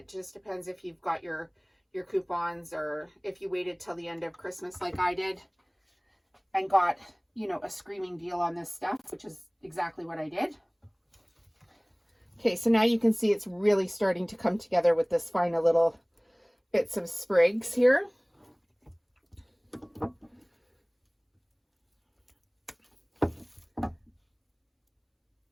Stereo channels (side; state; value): both; identical; correlation 1.00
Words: just depends if you've got your coupons, or if you waited till the end of Christmas like I did and got, you know, a screaming deal on this stuff, which is exactly what I did. Okay, so now you can see it's really starting to come together with this final little bits of sprigs here.